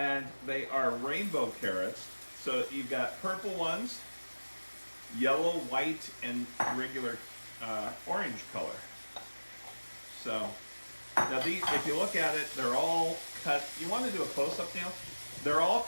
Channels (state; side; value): inverted; both; correlation -1.00